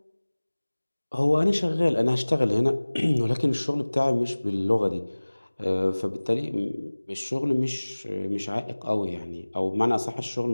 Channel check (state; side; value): inverted; both; correlation -1.00